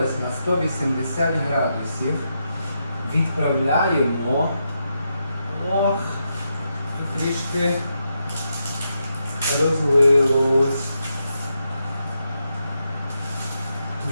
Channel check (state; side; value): inverted; both; correlation -0.84